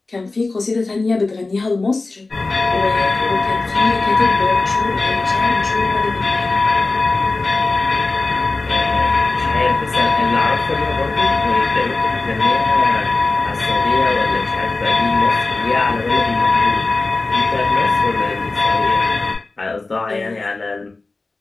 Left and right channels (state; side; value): quieter; right; 3.4 dB